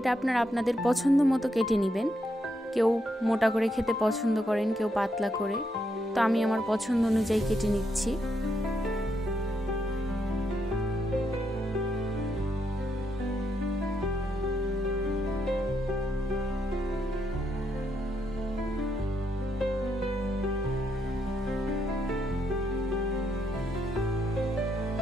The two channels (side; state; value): both; normal; correlation 0.79